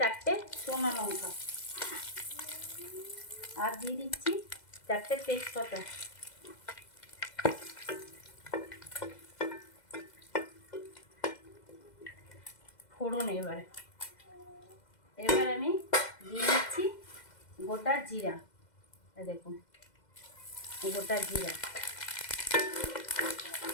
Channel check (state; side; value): late; right; 2.0 ms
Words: শুকনো লঙ্কা, আর দিয়ে দিচ্ছি 4টে তেজপাতা, ফোড়ন। এবার আমি দিয়ে দিচ্ছি গোটা জিরা, দেখুন গোটা জিরা।